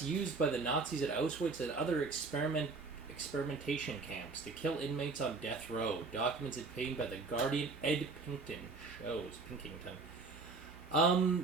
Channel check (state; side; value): quieter; left; 4.0 dB